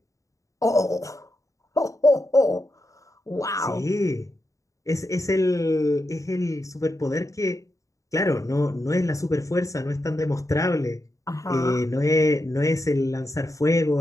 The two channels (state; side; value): late; right; 0.16 ms